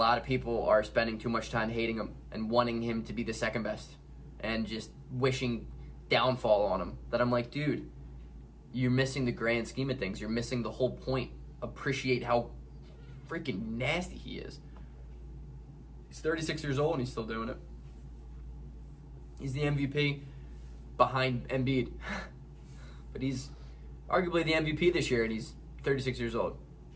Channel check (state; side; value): identical; both; correlation 1.00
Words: of people are spending too much time hating him and wanting him to be the second best and just wishing downfall on him. That I'm like, dude, you're missing the grand scheme of things. You're missing the whole point. Appreciate how freaking nasty he is. He's 36 years old and he's still doing it. He's the MVP behind Embiid. But he's arguably the MVP this year and he's 36 years old.